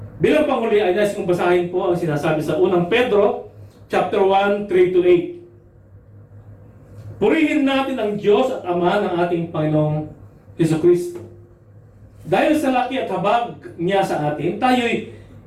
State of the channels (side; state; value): both; identical; correlation 1.00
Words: Bilang panghuli ay nais kong basahin po ang sinasabi sa unang Pedro, chapter 1, 3-8. Purihin natin ang Diyos at Ama ng ating Panginoong Jesucristo. Dahil sa laki at habag niya sa atin, tayo'y